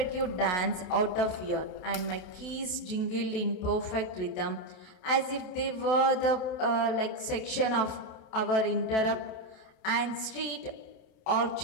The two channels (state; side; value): late; right; 27 ms